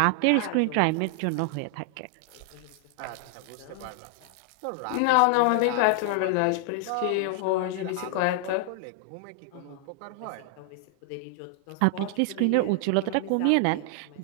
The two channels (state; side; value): different; both; correlation 0.00